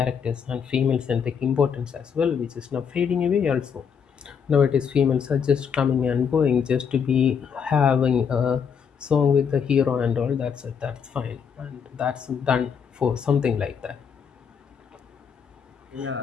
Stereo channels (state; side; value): quieter; right; 6.9 dB